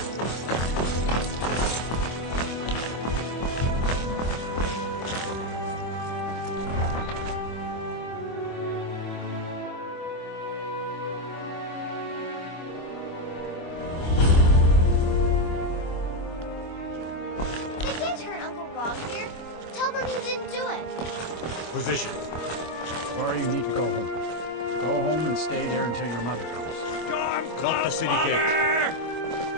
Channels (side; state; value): right; late; 25 ms